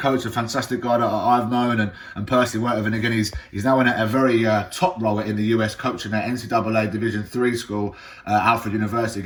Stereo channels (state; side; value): identical; both; correlation 1.00